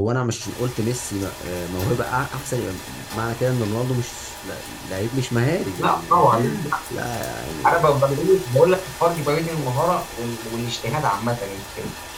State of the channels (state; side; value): identical; both; correlation 1.00